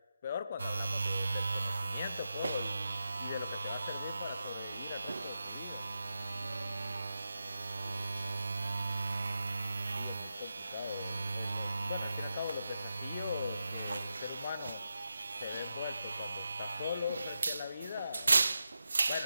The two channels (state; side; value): inverted; both; correlation -0.89